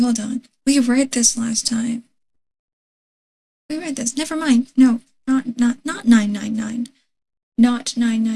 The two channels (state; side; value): identical; both; correlation 1.00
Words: on. We read this last time. We read this. Never mind. No, not 999. Not